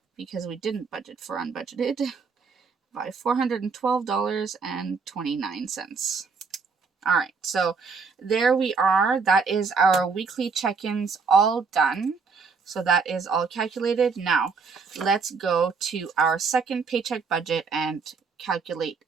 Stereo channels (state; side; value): quieter; left; 5.1 dB